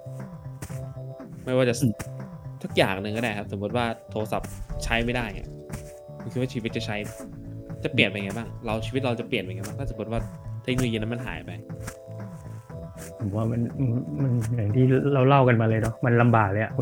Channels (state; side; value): identical; both; correlation 1.00